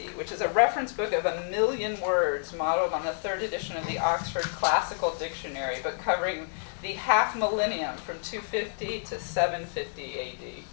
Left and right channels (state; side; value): silent; right; digital silence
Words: which is a reference book of 1 million words modeled on the 3rd edition of the Oxford Classical Dictionary, but covering the half millennium from 250 to 750 AD.